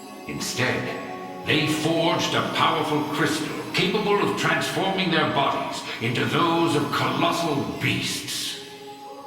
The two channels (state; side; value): identical; both; correlation 1.00